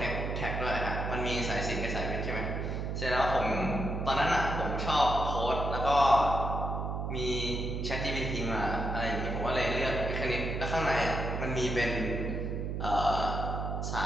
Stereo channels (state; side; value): noise; right; hum, 2 dB below the sound